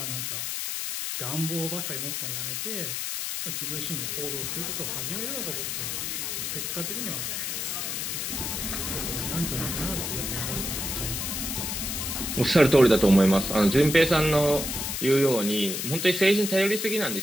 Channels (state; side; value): noise; left; hiss, 3 dB below the sound